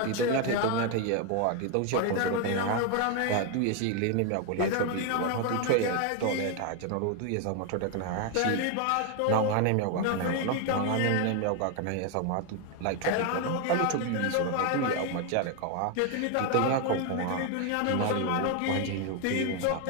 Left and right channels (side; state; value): both; different; correlation 0.01